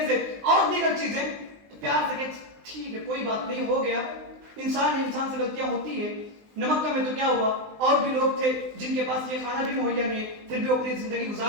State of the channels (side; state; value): left; late; 20 ms